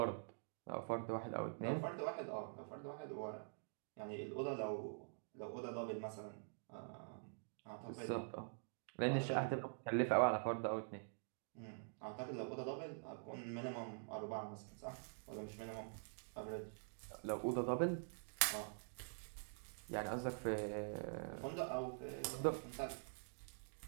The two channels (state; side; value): silent; left; digital silence